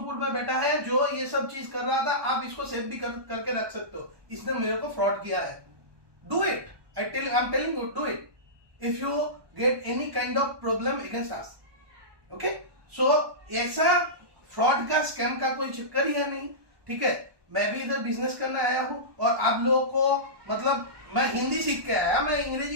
में बैठा है जो ये सब चीज कर रहा था, आप इसको सेव भी करके रख सकते हो। इसने मेरे को फ्रॉड किया है। Do it, I am telling you, do it if you get any kind of problem against us, okay? So ऐसा फ्रॉड का स्कैम का कोई चक्कर ही है नहीं, ठीक है? मैं भी इधर बिजनेस करने आया हूं और आप लोगों को मतलब मैं हिंदी सीख के आया, मैं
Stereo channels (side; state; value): left; late; 1.2 ms